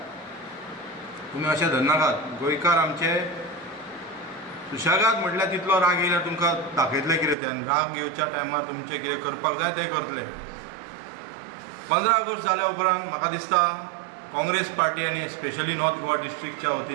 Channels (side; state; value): left; drops out; at 7.4 s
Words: तुमी अशें धरनाकात. गोंयकार आमचे सुशेगाद म्हटल्यार तितलो राग येयल्यार तुमकां दाखयतले कितें ते, आनी राग येवच्या टायमार तुमचें कितें करपाक जाय तें करतले. 15 ऑगस्ट जाल्या उपरांत म्हाका दिसता काँग्रेस पार्टी आनी स्पेशली नॉर्थ गोवा डिस्ट्रिक्टच्या